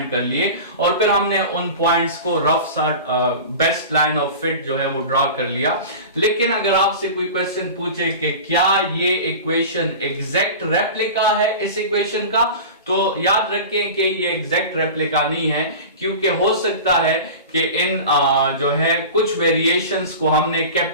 कर लिए, और फिर हमने उन पॉइंट्स को रफ सा बेस्ट लाइन ऑफ फिट जो है वो ड्रॉ कर लिया। लेकिन अगर आपसे कोई क्वेश्चन पूछे कि क्या ये इक्वेशन एग्जैक्ट रेप्लिका है इस इक्वेशन का, तो याद रखें कि ये एग्जैक्ट रेप्लिका नहीं है, क्योंकि हो सकता है कि इन जो है कुछ वेरिएशंस को हमने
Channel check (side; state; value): both; inverted; correlation -0.33